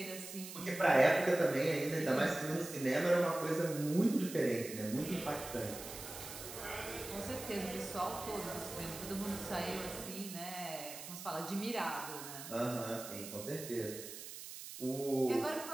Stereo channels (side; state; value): right; noise; hiss, 11 dB below the sound